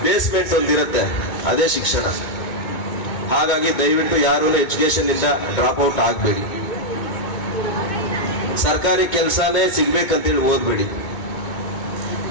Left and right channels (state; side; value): late; right; 2.2 ms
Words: ಬೇಸ್ಮೆಂಟ್ ಒಂದಿರುತ್ತೆ, ಅದೇ ಶಿಕ್ಷಣ. ಹಾಗಾಗಿ ದಯವಿಟ್ಟು ಯಾರು ಎಜುಕೇಶನ್ ಇಂದ ಡ್ರಾಪ್ ಔಟ್ ಆಗ್ಬೇಡಿ. ಸರ್ಕಾರಿ ಕೆಲಸನೇ ಸಿಗ್ಬೇಕಂತೇಳಿ ಓದ್ಬೇಡಿ.